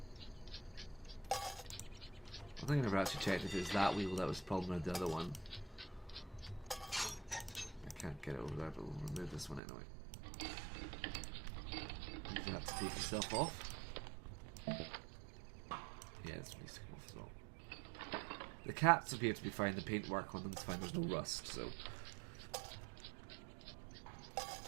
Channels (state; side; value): drops out; left; at 9.6 s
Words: I think I never actually checked if it was that wheel that was the problem or the other one. I can't get it over there, but we'll remove this one anyway. You have to take yourself off. Yeah, this needs to come off as well. The cats appear to be fine, the paintwork on them is fine, there's no rust, so...